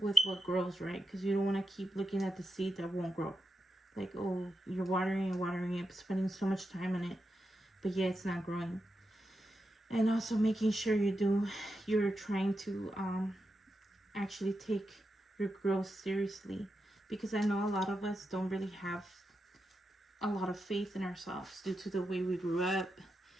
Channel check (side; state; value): both; normal; correlation 0.87